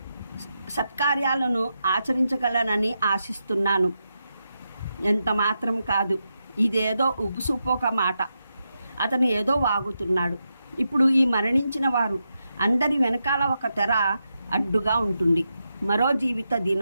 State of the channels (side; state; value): both; inverted; correlation -0.86